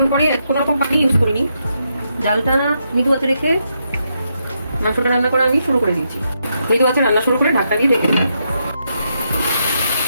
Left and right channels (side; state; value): both; inverted; correlation -0.81